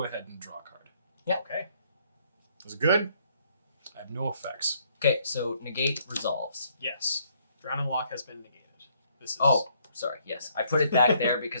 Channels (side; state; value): both; inverted; correlation -0.67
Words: ahead and draw a card. Okay. Was it good? I have no effects. Okay, so negate resolves. Yes. Drown and Lock has been negated. This is Oh, sorry. Yes, I put it back there because